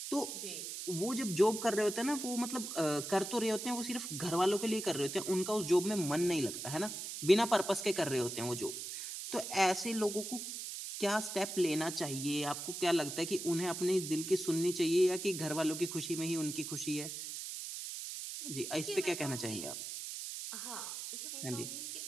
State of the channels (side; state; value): right; noise; hiss, 6 dB below the sound